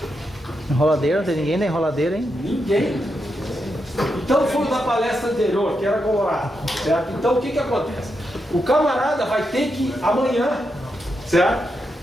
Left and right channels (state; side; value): normal; both; correlation 0.84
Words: Enroladeira, não tem ninguém da enroladeira, hein? Ninguém. Então foi da palestra anterior, que era colorado, certo? Então o que acontece? O camarada vai ter que, amanhã, certo?